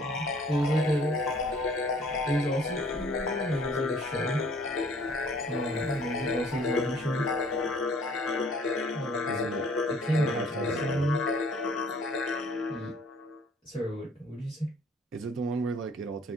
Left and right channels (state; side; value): normal; both; correlation 0.56